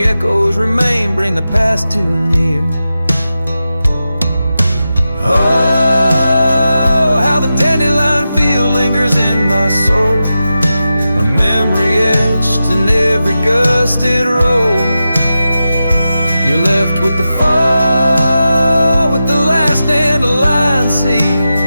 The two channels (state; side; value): inverted; both; correlation -0.91